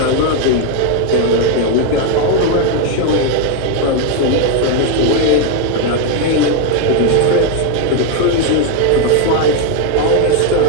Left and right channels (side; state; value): both; different; correlation 0.01